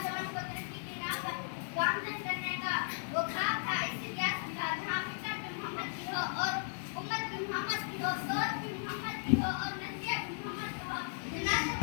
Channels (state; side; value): silent; right; digital silence